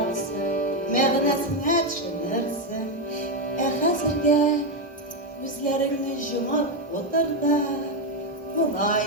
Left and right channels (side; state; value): both; normal; correlation 0.06